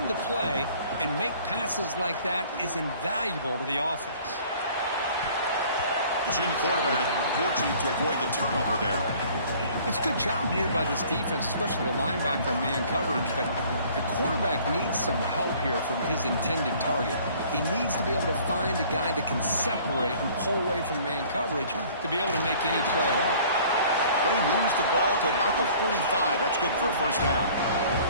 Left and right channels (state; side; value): inverted; both; correlation -0.52